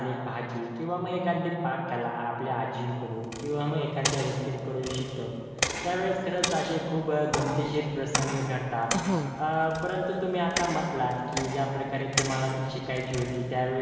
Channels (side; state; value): both; identical; correlation 1.00